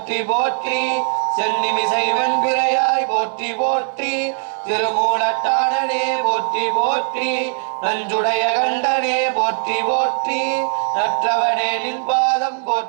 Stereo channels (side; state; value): left; silent; digital silence